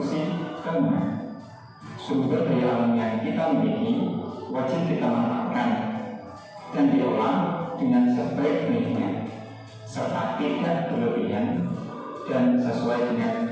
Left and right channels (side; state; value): both; identical; correlation 1.00